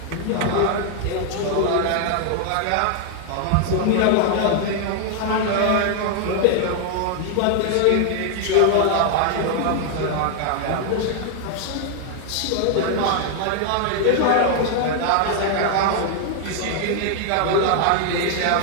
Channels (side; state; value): both; different; correlation 0.00